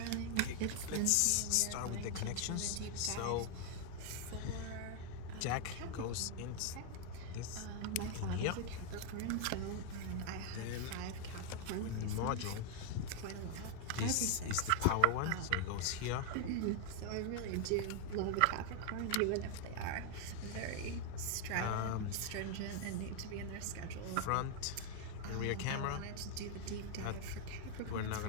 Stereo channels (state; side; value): different; both; correlation 0.00